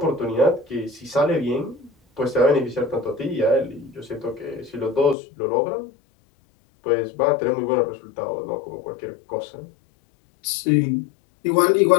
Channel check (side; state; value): right; drops out; at 5.2 s